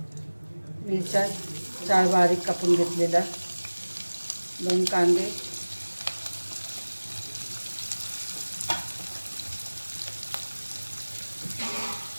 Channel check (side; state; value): both; inverted; correlation -1.00